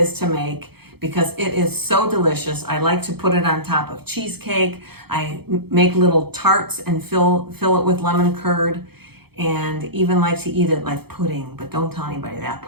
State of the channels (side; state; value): left; late; 0.96 ms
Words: to make, because it is so delicious. I like to put it on top of cheesecake. I make little tarts and fill it with lemon curd, and even like to eat it like pudding, but don't tell anybody that